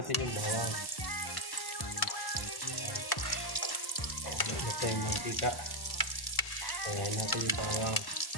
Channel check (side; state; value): right; late; 1.1 ms